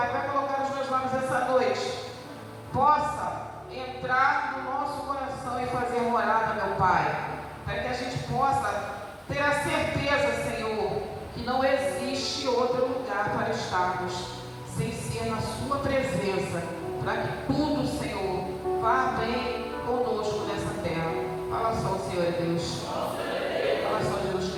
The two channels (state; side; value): identical; both; correlation 1.00